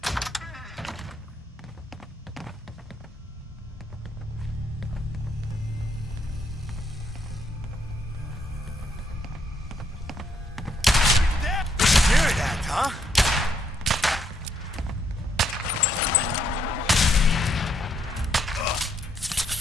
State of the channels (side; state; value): both; normal; correlation 0.74